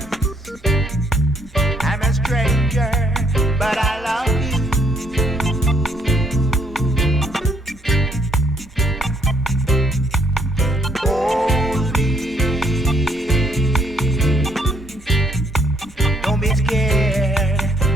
I'm a stranger, but I love you. Hold me. Don't be scared.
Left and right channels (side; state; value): both; normal; correlation 0.68